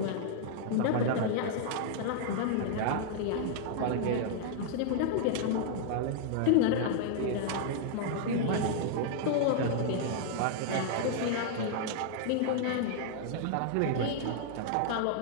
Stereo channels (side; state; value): both; different; correlation -0.01